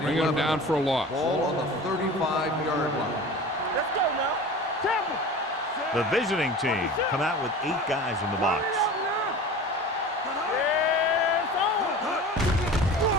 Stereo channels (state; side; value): normal; both; correlation 0.37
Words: bringing them down for a loss. Ball on the 35-yard line. Let's go now. Temple. The visiting team come out with 8 guys in the box.